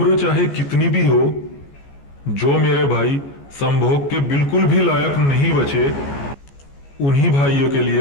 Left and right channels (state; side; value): late; right; 14 ms